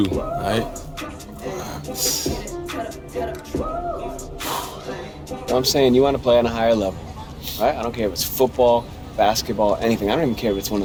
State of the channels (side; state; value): both; identical; correlation 1.00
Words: all right? Well, I'm saying you want to play on a higher level, right? I don't care if it's football, basketball, anything. I don't even care if it's one